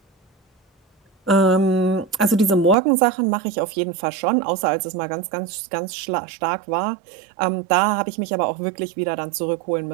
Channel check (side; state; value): left; drops out; at 2.8 s